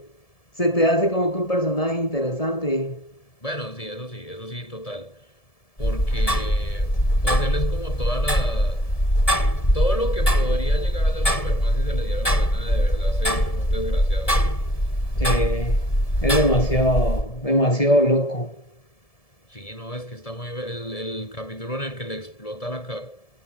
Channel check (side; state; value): right; late; 1.7 ms